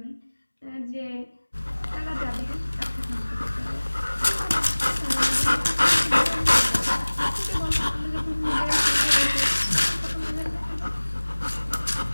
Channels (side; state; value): both; inverted; correlation -1.00